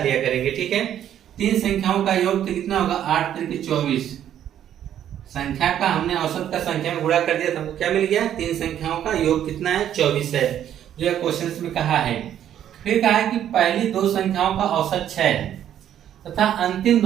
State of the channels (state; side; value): quieter; left; 10.5 dB